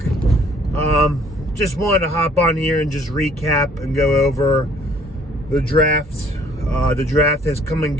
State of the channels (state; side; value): normal; both; correlation 0.59